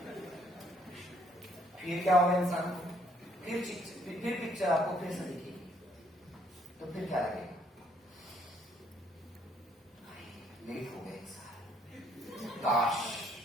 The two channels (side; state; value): both; normal; correlation 0.67